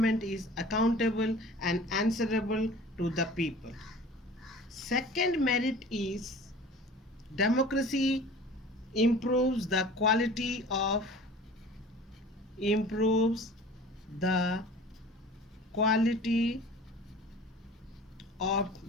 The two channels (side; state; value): both; normal; correlation 0.43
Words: is accountable and answerable to the people. Second merit is democracy improves the quality of